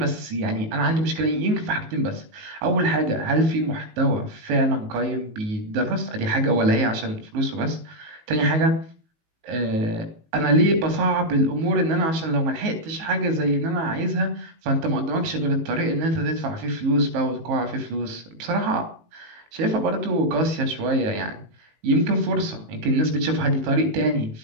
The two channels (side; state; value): left; late; 19 ms